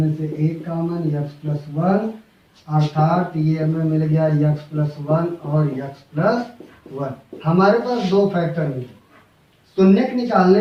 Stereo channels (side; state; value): both; identical; correlation 1.00